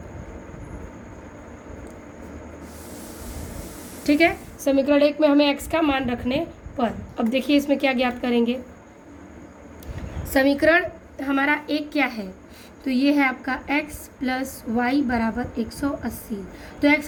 ठीक है। समीकरण 1 में हमें x का मान रखने पर, अब देखिए इसमें क्या ज्ञात करेंगे। समीकरण हमारा 1 क्या है, तो ये है आपका x प्लस वाई बराबर 180। तो x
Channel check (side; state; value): both; identical; correlation 1.00